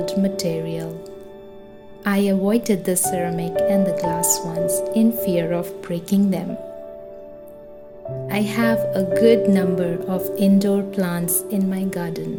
material. I avoided the ceramic and the glass ones in fear of breaking them. I have a good number of indoor plants in my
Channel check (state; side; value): identical; both; correlation 1.00